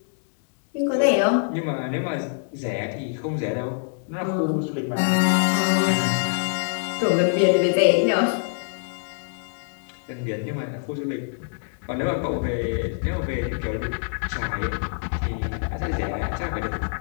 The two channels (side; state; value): right; silent; 62 dB below the other